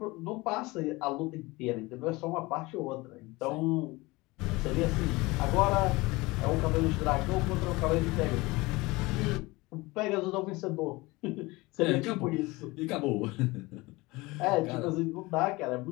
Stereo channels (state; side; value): quieter; right; 22.3 dB